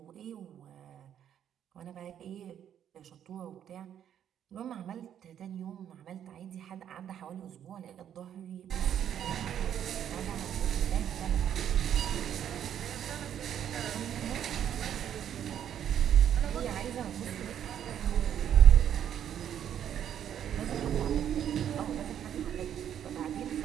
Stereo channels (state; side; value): quieter; left; 9.7 dB